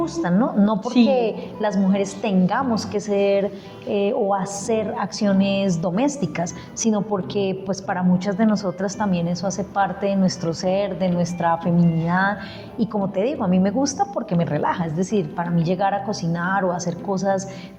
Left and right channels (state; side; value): identical; both; correlation 1.00